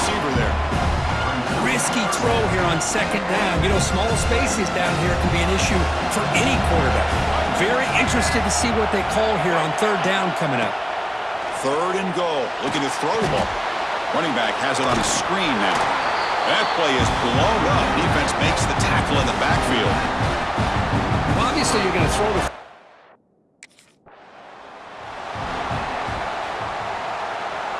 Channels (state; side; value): identical; both; correlation 1.00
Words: there. Risky throw here on second down. You know, small spaces down here can be an issue for any quarterback. Very interested to see what they call here on third down coming up. Third and goal. Looking to throw the ball. Running back has it on a screen now. That play is blown up. Defense makes the tackle in the backfield. Well, obviously, you're going to throw the...